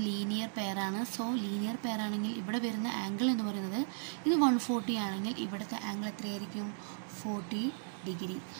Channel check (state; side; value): silent; left; digital silence